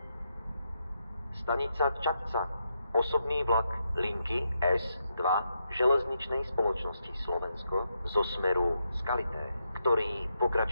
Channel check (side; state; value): both; inverted; correlation -0.82